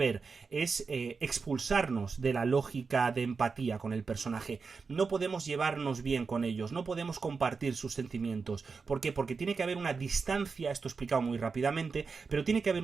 es expulsarnos de la lógica de empatía con el personaje. No podemos llevarnos bien con ellos, no podemos compartir sus sentimientos. ¿Por qué? Porque tiene que haber una distancia, esto explicado muy rápidamente, pero tiene que haber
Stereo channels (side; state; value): left; quieter; 4.9 dB